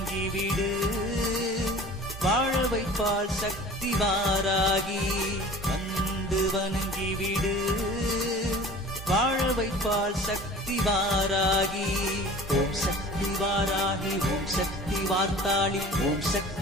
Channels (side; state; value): both; normal; correlation 0.43